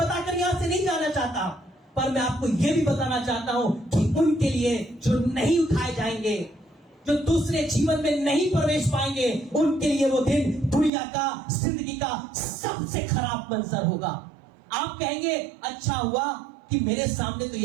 यहां से नहीं जाना चाहता, पर मैं आपको यह भी बताना चाहता हूं कि उनके लिए जो नहीं उठाए जाएंगे, जो दूसरे जीवन में नहीं प्रवेश पाएंगे, उनके लिए वो दिन दुनिया का, जिंदगी का सबसे खराब मंजर होगा। आप कहेंगे अच्छा हुआ कि मेरे सामने तो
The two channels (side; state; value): left; drops out; at 10.9 s